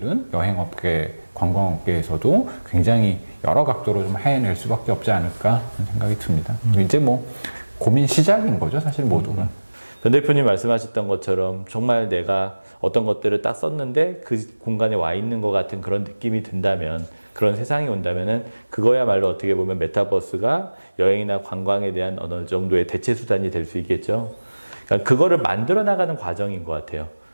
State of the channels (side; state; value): both; inverted; correlation -1.00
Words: 여행업계, 관광업계에서도 굉장히 여러 각도로 좀 해낼 수밖에 없지 않을까 하는 생각이 듭니다. 이제 뭐 고민 시작인 거죠, 사실 모두가. 변 대표님 말씀하셨던 것처럼 정말 내가 어떤 것들을 딱 썼는데 그 공간에 와 있는 것 같은 그런 느낌이 든다면, 그런 세상이 온다면은 그거야말로 어떻게 보면 메타버스가 여행이나 관광에 대한 어느 정도의 대체 수단이 될 수 있겠죠. 그러니까 그거를 만들어 나가는 과정인 것 같아요.